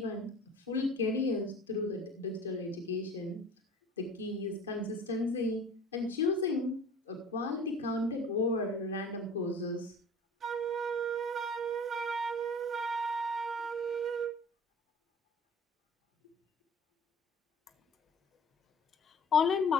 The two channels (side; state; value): both; normal; correlation 0.43